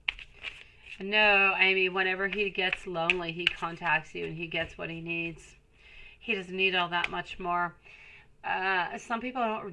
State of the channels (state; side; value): identical; both; correlation 1.00